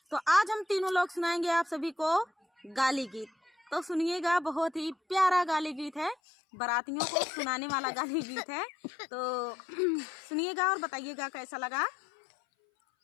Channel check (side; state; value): right; drops out; at 6.2 s